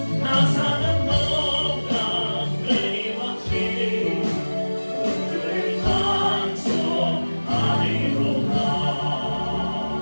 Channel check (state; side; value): inverted; both; correlation -1.00